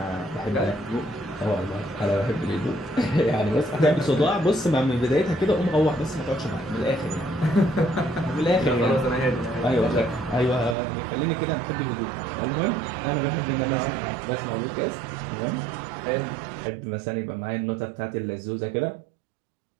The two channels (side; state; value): left; drops out; at 10.8 s